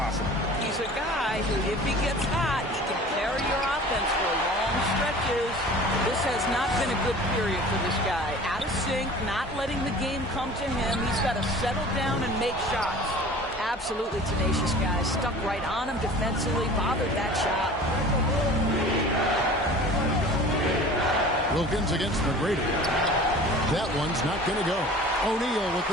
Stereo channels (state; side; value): normal; both; correlation 0.43